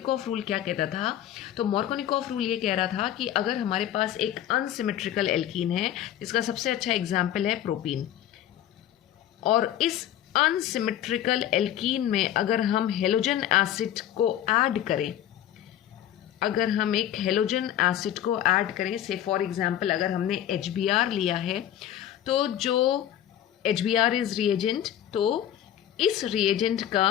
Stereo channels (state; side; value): quieter; right; 11.5 dB